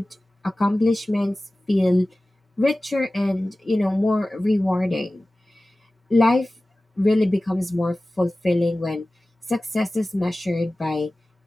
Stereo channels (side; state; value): both; normal; correlation 0.97